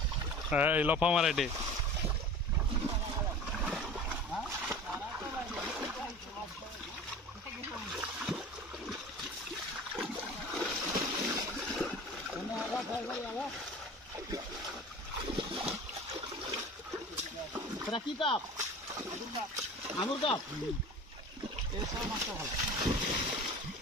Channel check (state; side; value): normal; both; correlation 0.39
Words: এই লফা মারা এটে কি কাপ আঙুর কাপ